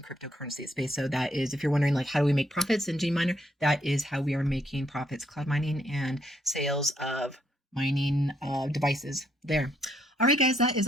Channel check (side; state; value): both; normal; correlation 0.73